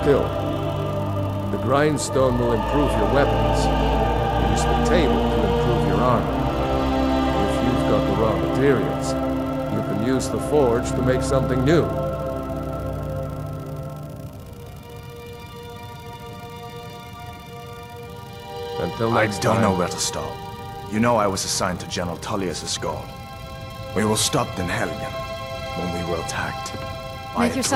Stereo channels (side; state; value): both; identical; correlation 1.00